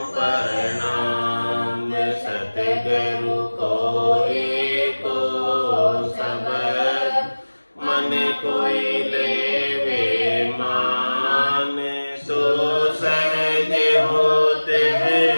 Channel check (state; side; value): inverted; both; correlation -1.00